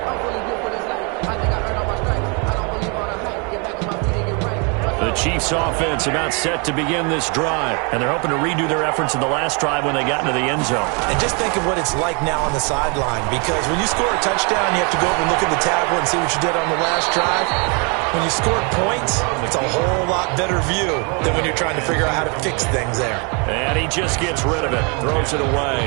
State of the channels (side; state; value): left; quieter; 34.1 dB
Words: The Chiefs offense about set to begin this drive, and they're hoping to redo their efforts in the last drive when they got into the end zone. And just think of what it's like now on the sideline, because when you score a touchdown, you have to go over and look at the tablet and see what you did on the last drive. When you score points, it's a whole lot better view than when you're trying to figure out how to fix things there. And he just gets rid of it, throws it